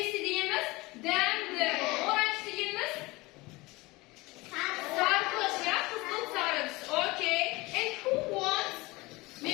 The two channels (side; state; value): right; quieter; 22.2 dB